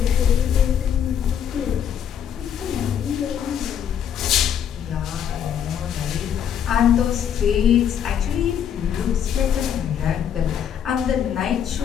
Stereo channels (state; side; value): quieter; right; 8.8 dB